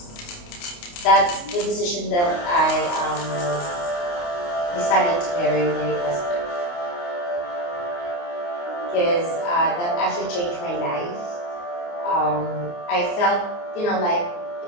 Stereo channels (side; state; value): right; late; 29 ms